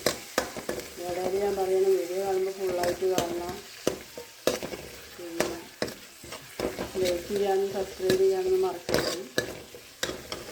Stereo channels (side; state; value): both; identical; correlation 1.00